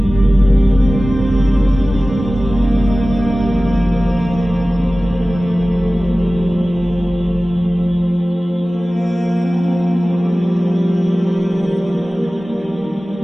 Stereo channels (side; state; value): both; normal; correlation 0.97